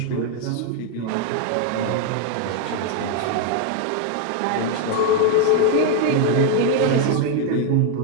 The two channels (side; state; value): both; different; correlation 0.01